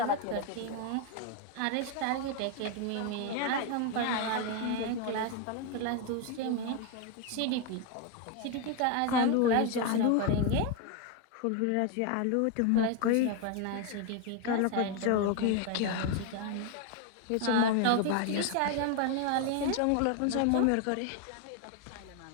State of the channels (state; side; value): different; both; correlation 0.01